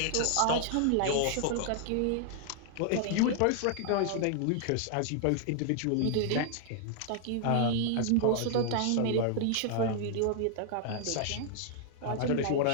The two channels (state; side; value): different; both; correlation 0.00